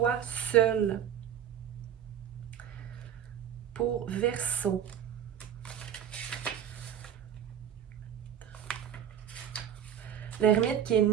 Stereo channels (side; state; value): left; quieter; 9.6 dB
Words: seul. Pour Verseau. L'ermite qui est